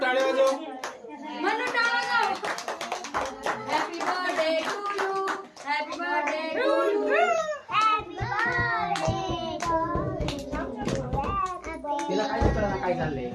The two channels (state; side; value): identical; both; correlation 1.00